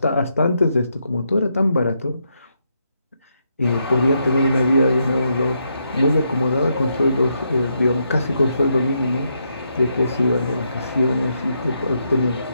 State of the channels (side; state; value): both; inverted; correlation -0.80